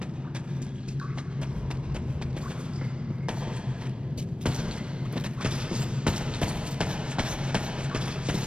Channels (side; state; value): left; late; 0.056 ms